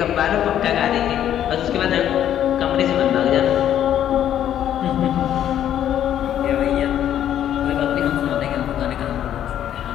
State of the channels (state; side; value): quieter; right; 10.7 dB